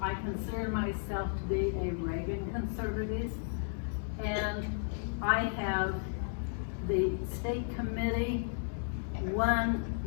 I consider myself to be a Reagan conservative. And I have the state committee. One,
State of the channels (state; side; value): silent; right; digital silence